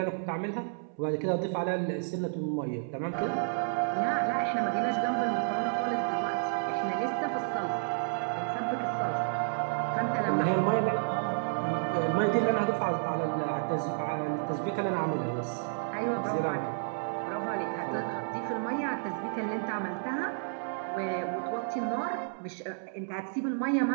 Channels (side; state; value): left; silent; 57 dB below the other